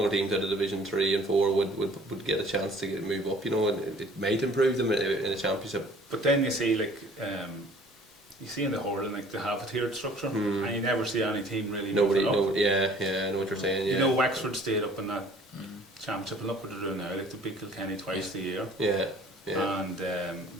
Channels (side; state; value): both; normal; correlation 0.53